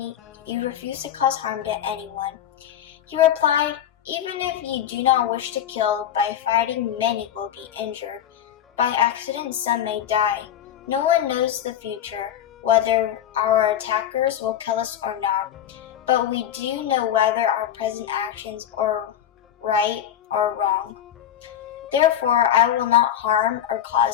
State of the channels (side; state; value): right; quieter; 10.5 dB